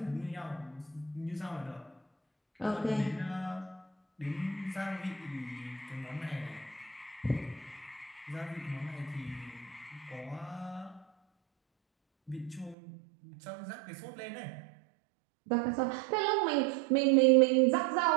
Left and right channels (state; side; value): drops out; left; at 12.8 s